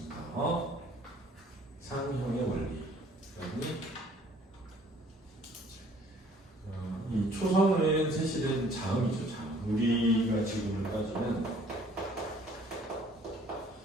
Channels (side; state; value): both; normal; correlation 0.57